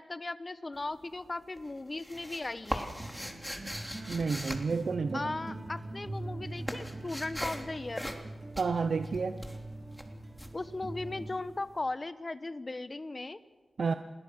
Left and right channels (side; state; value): both; normal; correlation 0.93